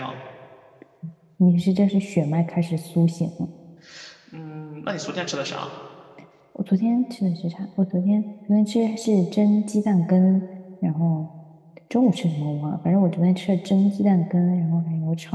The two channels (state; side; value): identical; both; correlation 1.00